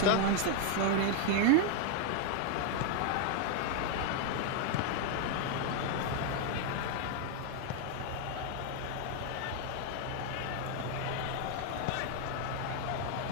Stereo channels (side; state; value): both; different; correlation 0.00